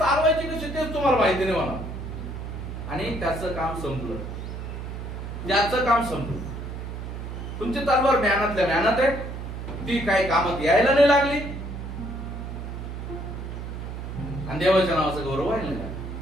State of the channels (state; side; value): noise; right; hum, 7 dB below the sound